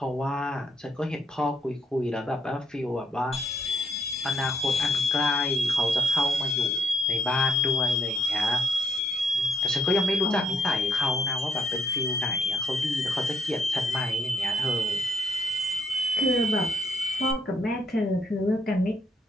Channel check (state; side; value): normal; both; correlation 0.73